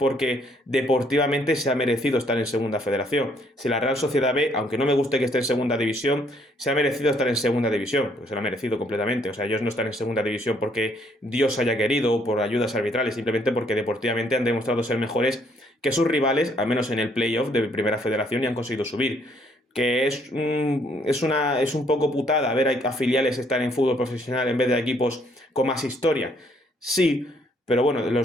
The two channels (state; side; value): normal; both; correlation 0.67